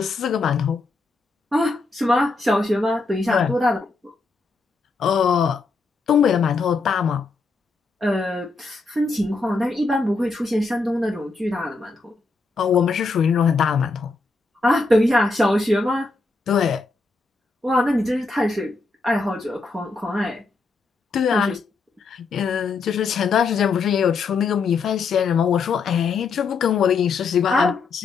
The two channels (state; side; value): quieter; right; 3.9 dB